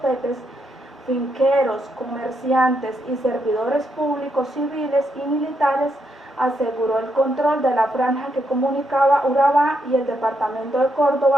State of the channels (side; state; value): both; normal; correlation 0.79